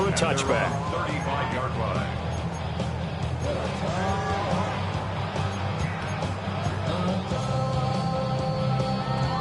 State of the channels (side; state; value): both; identical; correlation 1.00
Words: a touchback. 35-yard line.